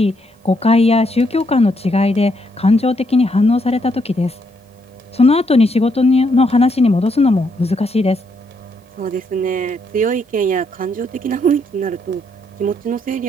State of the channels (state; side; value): normal; both; correlation 0.75